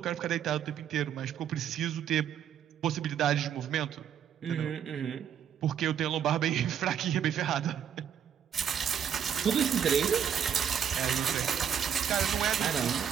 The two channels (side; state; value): left; quieter; 8.6 dB